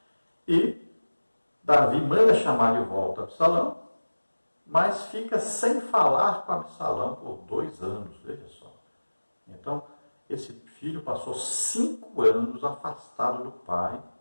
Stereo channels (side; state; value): both; inverted; correlation -1.00